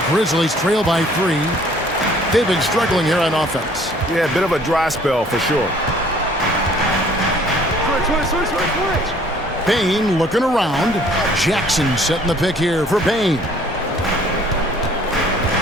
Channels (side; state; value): both; normal; correlation 0.57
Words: Grizzlies trail by 3. They've been struggling here on offense. Yeah, a bit of a dry spell for sure. Bain looking around. Jackson setting the pick here for Bain.